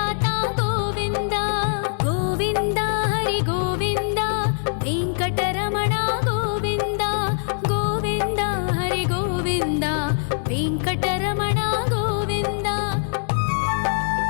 गोविन्द गोविन्द हरि गोविन्द वेङ्कटरमण गोविन्द गोविन्द हरि गोविन्द वेङ्कटरमण गोविन्द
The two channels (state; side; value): silent; right; digital silence